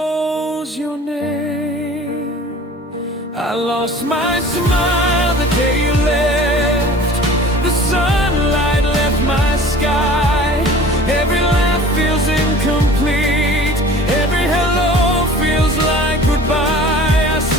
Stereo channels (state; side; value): normal; both; correlation 0.45